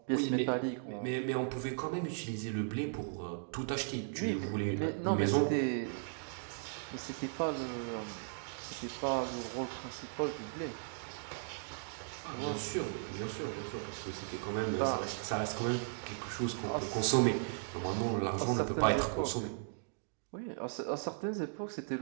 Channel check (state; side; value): silent; left; digital silence